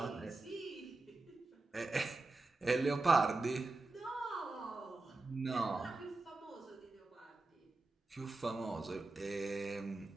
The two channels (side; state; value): left; quieter; 3.2 dB